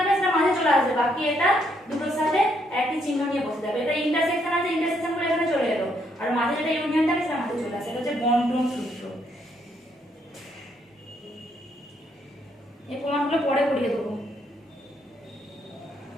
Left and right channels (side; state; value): both; normal; correlation 0.73